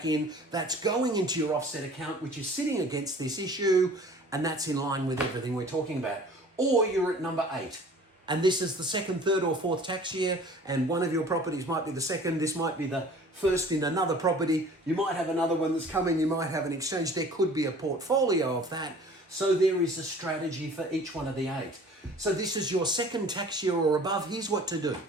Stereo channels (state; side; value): normal; both; correlation 0.48